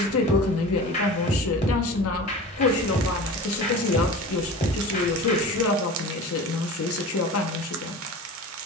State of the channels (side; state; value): both; normal; correlation 0.35